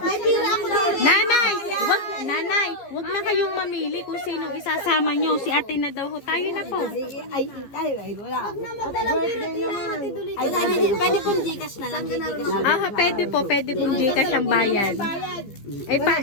pira ako din. Nanay, wag na kayong mamili kung sinong isasama nyo. Si ate na daw ho. Tayo na po. Ay, tayo, ay, wala. Pwede pong Gcash na lang. Pwede pong Gcash ang bayad.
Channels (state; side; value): late; right; 15 ms